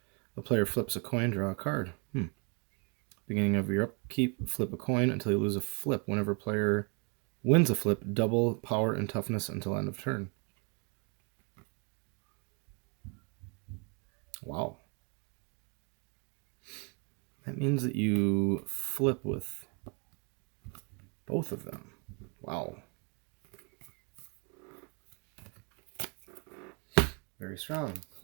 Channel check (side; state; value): left; quieter; 34.9 dB